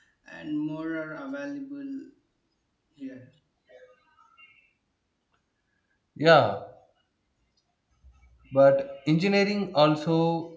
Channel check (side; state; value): both; identical; correlation 1.00